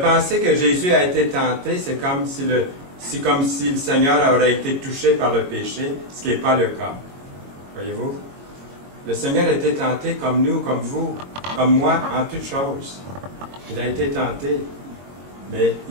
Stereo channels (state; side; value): late; left; 22 ms